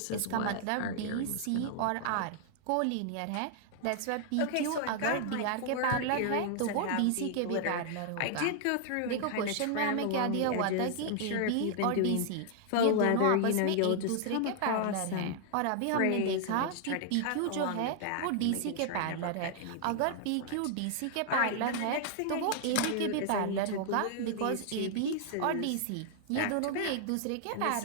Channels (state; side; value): different; both; correlation -0.01